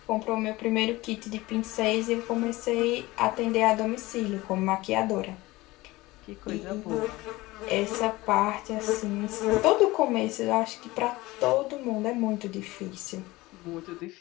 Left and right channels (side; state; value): right; quieter; 20.0 dB